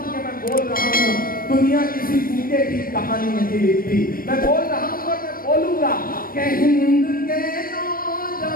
कि मैं बोल रहा हूँ। दुनिया किसी भूखे की कहानी नहीं लिखती। मैं बोल रहा हूँ और मैं बोलूंगा कि हिंद के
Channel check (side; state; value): right; late; 0.41 ms